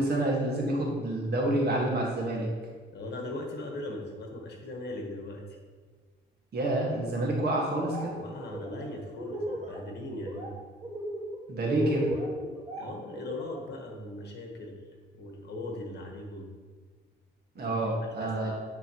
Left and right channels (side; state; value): both; normal; correlation 0.52